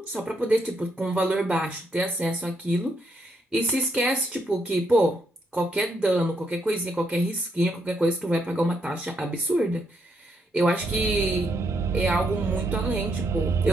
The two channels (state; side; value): normal; both; correlation 0.77